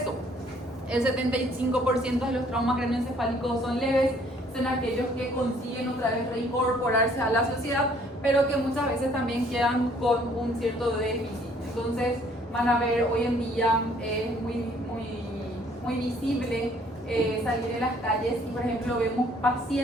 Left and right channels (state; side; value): normal; both; correlation 0.61